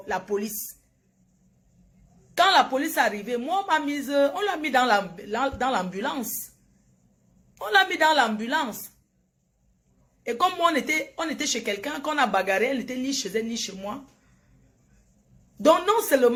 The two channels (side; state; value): both; identical; correlation 1.00